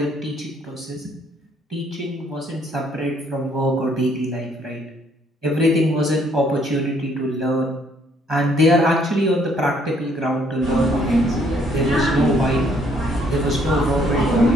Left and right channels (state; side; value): normal; both; correlation 0.66